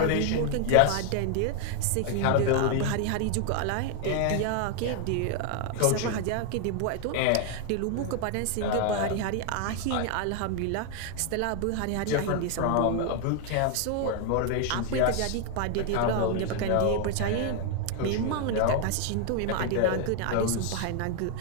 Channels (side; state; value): both; different; correlation 0.00